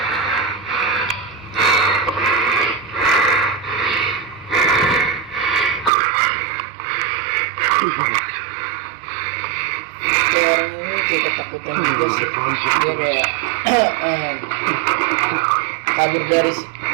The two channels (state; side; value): drops out; left; at 5.9 s